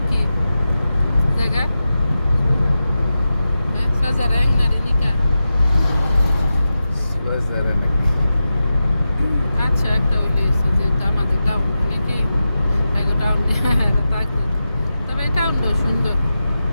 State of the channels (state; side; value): inverted; both; correlation -0.92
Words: কি জায়গা? হ্যাঁ, সজারে এংনারে নিকা। আচ্ছা, একটা হইলে হয়েছে, যেহেতু আমাদের টাউন অনেকে টাউন থাকবে, তবে এই টাউনটাও সুন্দর।